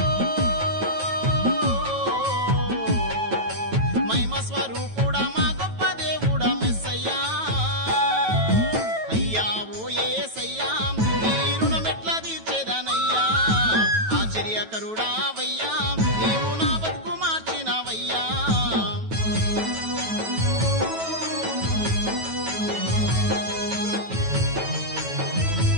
మహిమ స్వరూపుడా మా గొప్ప దేవుడా మెస్సయ్యా అయ్యా ఓ యేసయ్యా నీ రుణమెట్లా తీర్చేదనయ్యా ఆశ్చర్యకరుడావయ్యా నీవు నా బతుకు మార్చినవయ్యా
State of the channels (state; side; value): late; left; 9.2 ms